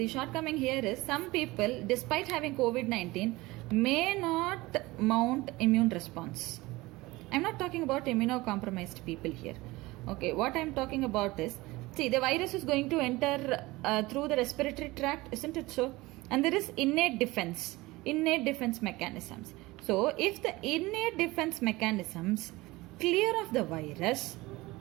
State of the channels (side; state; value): left; quieter; 20.7 dB